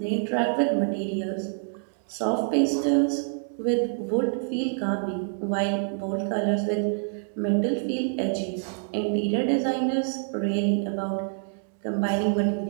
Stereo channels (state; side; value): silent; left; digital silence